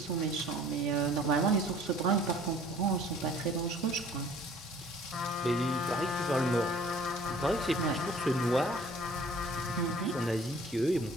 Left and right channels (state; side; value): normal; both; correlation 0.52